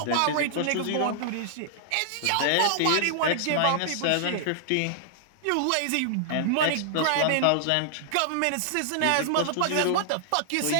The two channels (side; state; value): both; different; correlation -0.01